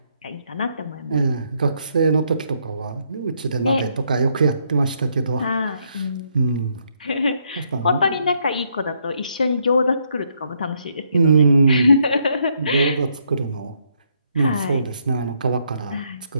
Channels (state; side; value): inverted; both; correlation -0.73